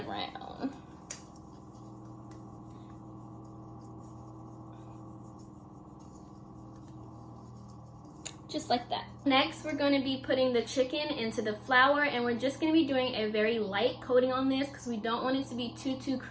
around. Just like that. Next, we're going to be putting the chicken into the flour, and we're just going to be doing a very light coating on this because we don't want it to be too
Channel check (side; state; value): both; identical; correlation 1.00